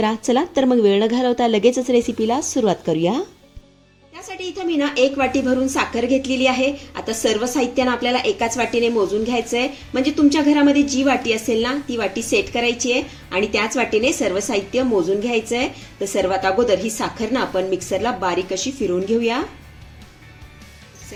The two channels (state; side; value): identical; both; correlation 1.00